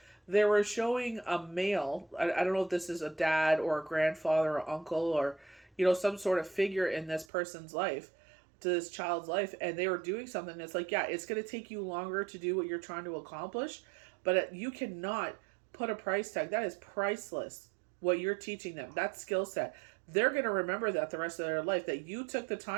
They were showing a male, I don't know if this is a dad or a grandfather or uncle or some sort of figure in this person's life, to this child's life, and they were doing something that's like, yeah, it's going to take you longer to do what you're trying to accomplish, but you cannot put a price tag. That is priceless. What you're teaching them, that skill set, they're going to remember that the rest of their life, that you took the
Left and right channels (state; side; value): drops out; left; at 7.2 s